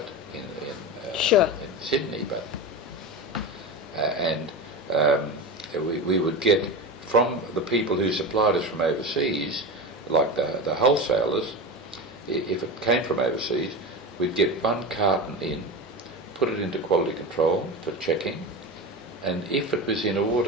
in Sydney, but we would get from the people who supplied us from overseas, like the wholesalers, if it came from overseas, we'd get one carton in, put it into quality control for checking, and if it was in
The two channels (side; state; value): both; normal; correlation 0.23